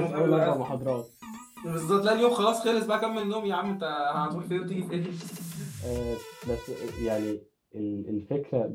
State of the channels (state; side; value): identical; both; correlation 1.00